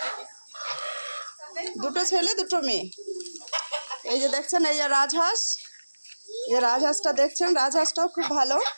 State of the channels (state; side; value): inverted; both; correlation -1.00